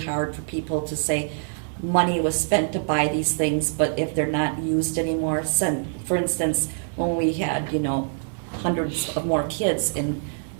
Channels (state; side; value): silent; left; digital silence